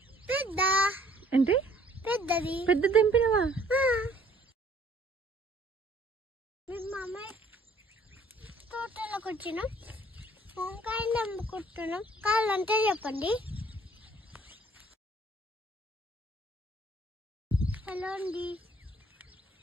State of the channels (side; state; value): both; normal; correlation 0.58